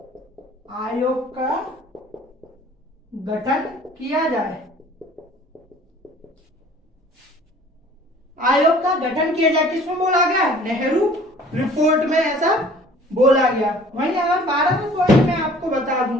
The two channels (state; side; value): normal; both; correlation 0.51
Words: आयोग का गठन किया जाए। आयोग का गठन किया जाए किसमें बोला गया? नेहरू रिपोर्ट में ऐसा बोला गया। वहीं अगर 12वें पॉइंट में आपको बता दूं,